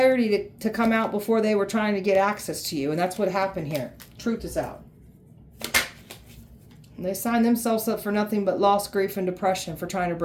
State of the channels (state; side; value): identical; both; correlation 1.00